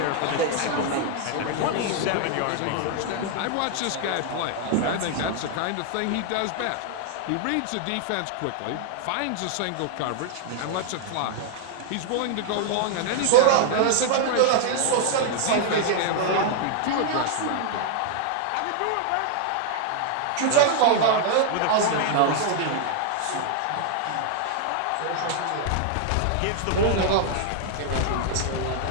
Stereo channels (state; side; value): different; both; correlation 0.00